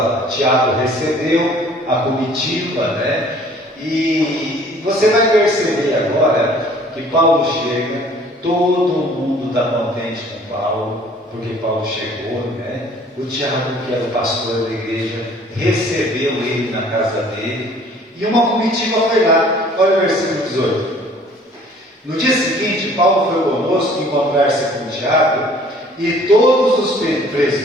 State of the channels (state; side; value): normal; both; correlation 0.54